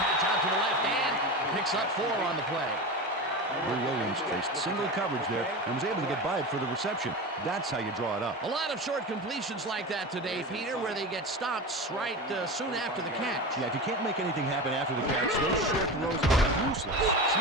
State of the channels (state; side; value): normal; both; correlation 0.26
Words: out to the left and picks up 4 on the play. Drew Williams faced single coverage there and was able to get by it for the reception. That's how you draw it up. A lot of short completions like that today, Peter, where they get stopped right soon after the catch. Yeah, if you can't make anything happen after the catch, those short throws are useless.